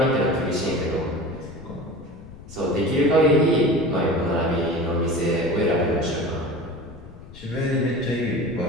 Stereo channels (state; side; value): noise; left; rumble, 17 dB below the sound